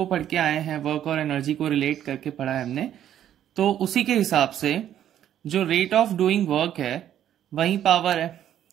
पढ़ के आए हैं, वर्क और एनर्जी को रिलेट करके पढ़ा है हमने, तो उसी के हिसाब से जो रेट ऑफ डूइंग वर्क है वही पावर है।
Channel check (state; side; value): quieter; left; 10.8 dB